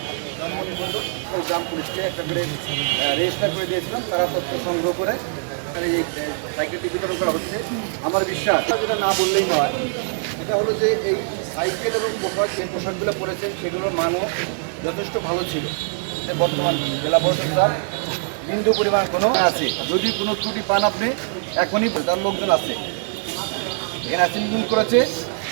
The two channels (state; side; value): silent; left; digital silence